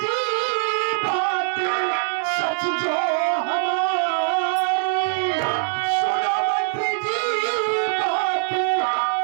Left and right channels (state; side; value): silent; left; digital silence